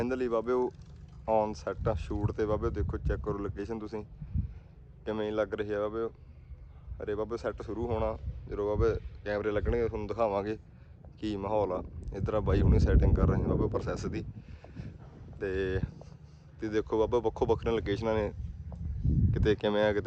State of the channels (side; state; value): both; identical; correlation 1.00